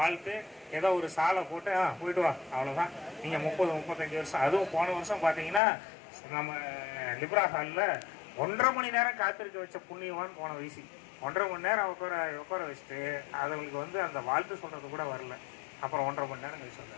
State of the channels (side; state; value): right; drops out; at 5.6 s